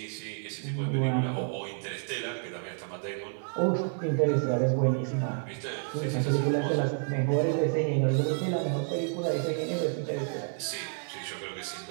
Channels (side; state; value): left; silent; 58 dB below the other